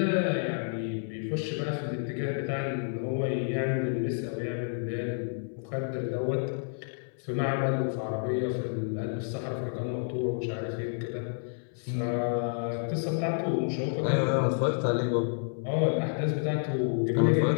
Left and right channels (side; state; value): right; silent; 58 dB below the other